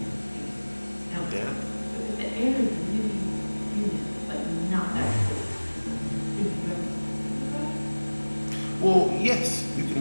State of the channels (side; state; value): both; inverted; correlation -1.00